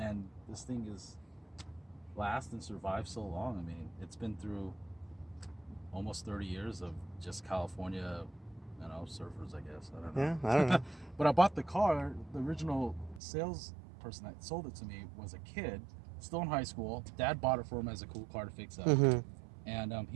this thing is last and survived so long. It's been through almost 30 years of just California, surfers, I guess. I don't know. Yeah, I don't know. But I bought the car. The original salesperson that sold it to me was a kid, still in high school. Dad bought it for him as a cool car to fix up. Mm-hmm. And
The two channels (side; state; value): left; drops out; at 13.2 s